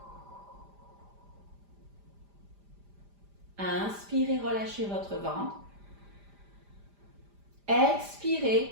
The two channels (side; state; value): left; late; 5.0 ms